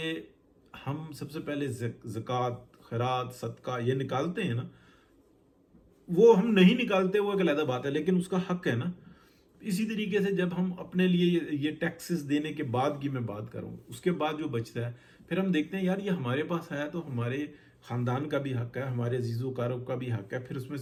हम सबसे पहले ज़कात, खैरात, सदका ये निकालते हैं ना, वो हम नहीं निकालते वो एक अलग बात है, लेकिन उसका हक है ना। इसी तरीके से जब हम अपने लिए ये टैक्सेस देने के बाद की मैं बात करूँ, उसके बाद जो बचता है फिर हम देखते हैं यार ये हमारे पास आया तो हमारे ख़ानदान का भी हक है, हमारे अजीज़ोकारों का भी हक है, फिर उसमें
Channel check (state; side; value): identical; both; correlation 1.00